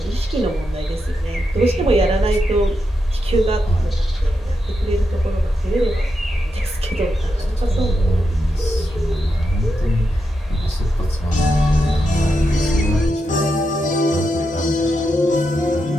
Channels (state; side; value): normal; both; correlation 0.85